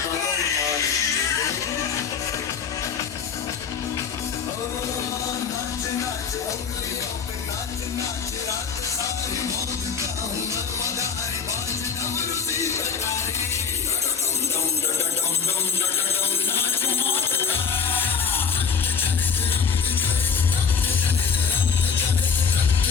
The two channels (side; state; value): right; quieter; 6.2 dB